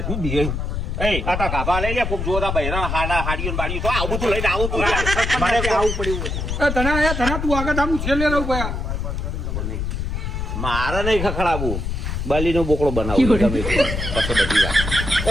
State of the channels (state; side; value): noise; left; rumble, 3 dB below the sound